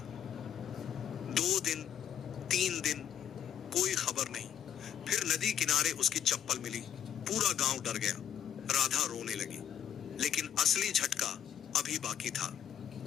2 दिन, 3 दिन, कोई खबर नहीं। फिर नदी किनारे उसकी चप्पल मिली। पूरा गांव डर गया। राधा रोने लगी, लेकिन असली झटका अभी बाकी था।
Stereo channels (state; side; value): quieter; right; 9.5 dB